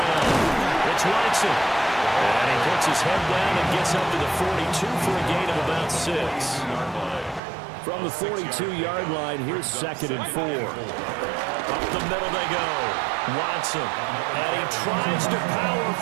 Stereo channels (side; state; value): left; drops out; at 7.4 s